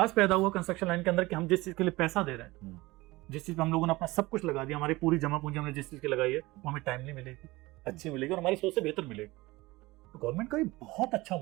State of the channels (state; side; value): quieter; left; 20.8 dB